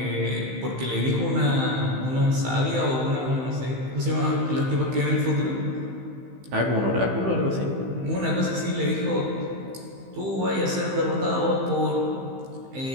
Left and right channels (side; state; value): left; late; 15 ms